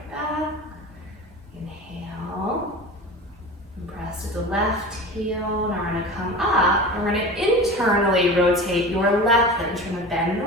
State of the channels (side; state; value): both; normal; correlation 0.34